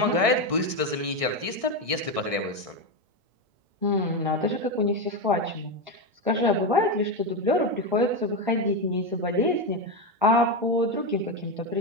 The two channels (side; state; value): left; late; 1.6 ms